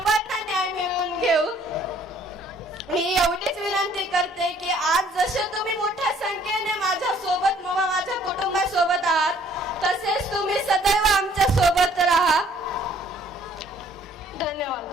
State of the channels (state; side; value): normal; both; correlation 0.60